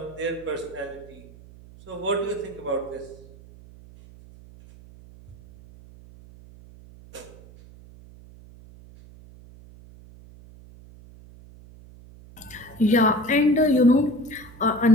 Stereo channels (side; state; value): right; noise; hum, 21 dB below the sound